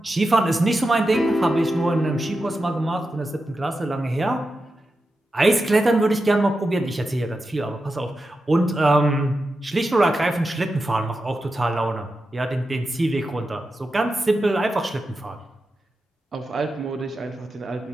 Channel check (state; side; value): normal; both; correlation 0.90